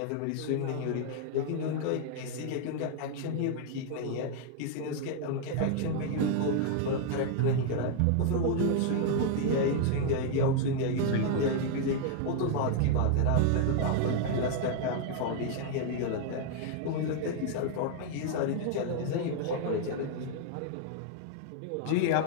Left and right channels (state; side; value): different; both; correlation 0.00